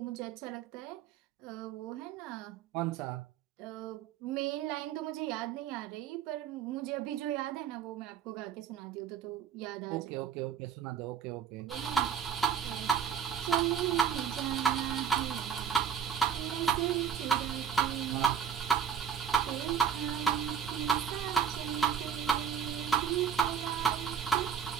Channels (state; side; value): quieter; left; 7.9 dB